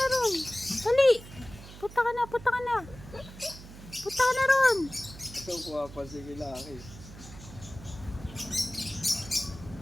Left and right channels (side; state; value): right; noise; hum, 16 dB below the sound